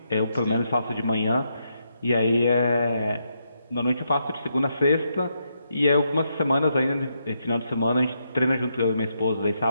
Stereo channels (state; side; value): inverted; both; correlation -0.80